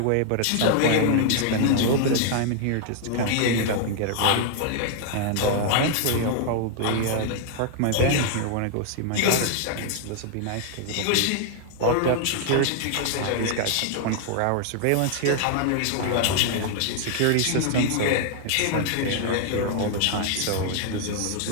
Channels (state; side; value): different; both; correlation 0.00